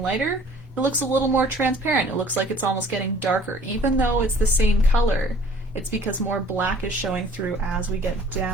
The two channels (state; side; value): normal; both; correlation 0.53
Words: lighter, it looks a little more transparent. It looks like it's almost getting darker, even though it's the same color. It's because more black is showing through as we get